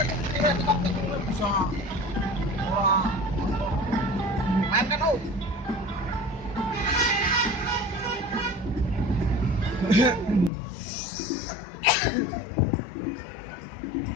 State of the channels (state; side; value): drops out; right; at 10.5 s